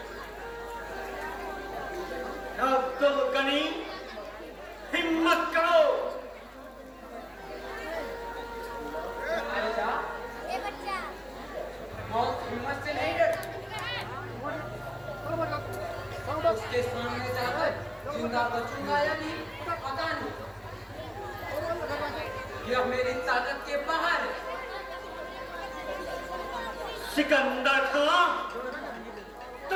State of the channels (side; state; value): both; identical; correlation 1.00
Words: अब तुम गनी हिम्मत करो। हिम्मत से नहीं डर, उसके सामने जाकर जिंदा बचूंगा या नहीं पता नहीं, यह मेरी ताकत के बाहर है। सिकंदर खां,